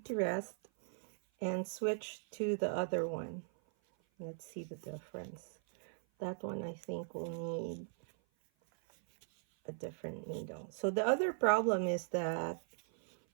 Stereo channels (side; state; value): left; silent; 52 dB below the other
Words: to rest and switch to the other one. Let's see the difference. That one I think will need a different needle. So the other problem is that